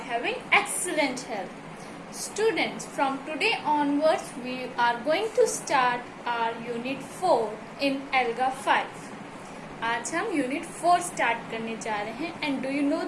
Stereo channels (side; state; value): both; identical; correlation 1.00